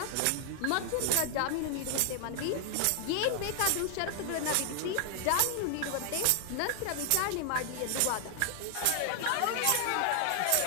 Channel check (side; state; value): both; different; correlation 0.00